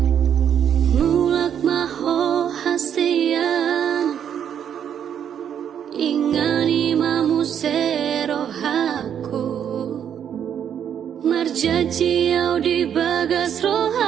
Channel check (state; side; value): quieter; left; 8.9 dB